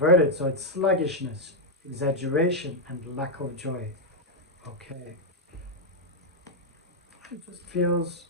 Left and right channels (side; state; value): both; normal; correlation -0.01